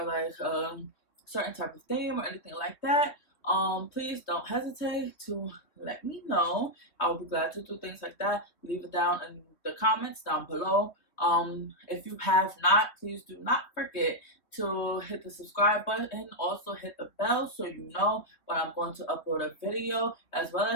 like a certain type of theme or anything like that, please don't hesitate to let me know. I will be glad to do things like that. Leave it down in the comments down below. If you have not, please do not forget to hit the subscribe button, also hit the bell so you know when I'm going to upload a video, as well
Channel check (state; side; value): late; right; 3.2 ms